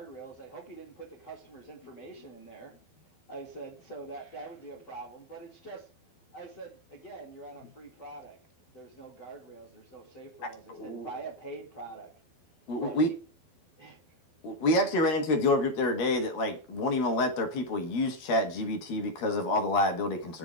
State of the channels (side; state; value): right; late; 12 ms